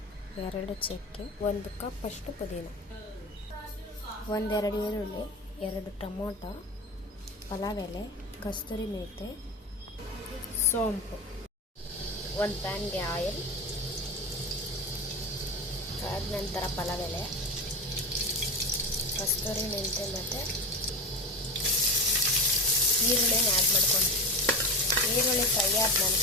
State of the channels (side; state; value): both; normal; correlation 0.23